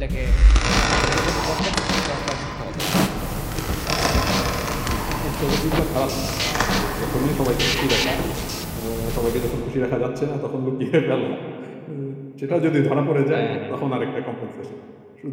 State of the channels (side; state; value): both; identical; correlation 1.00